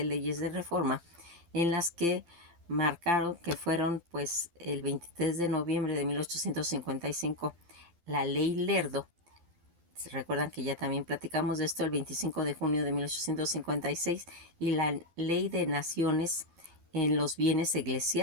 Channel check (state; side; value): late; left; 12 ms